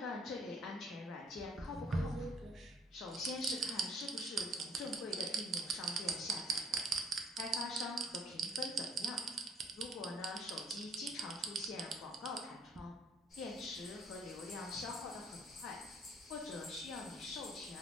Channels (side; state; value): both; normal; correlation 0.59